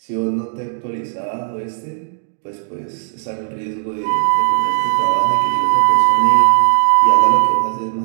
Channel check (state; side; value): silent; left; digital silence